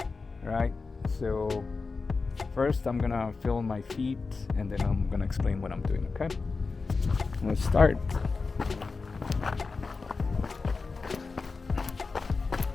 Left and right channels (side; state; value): right; quieter; 4.3 dB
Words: Right, so first I'm gonna feel my feet and then I'm gonna explain what I'm doing, okay? Let's start.